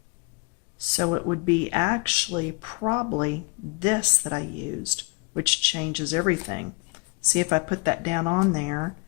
so it would be actually probably this that I used, which changes everything. See, if I put that down on there,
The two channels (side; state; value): right; quieter; 27.4 dB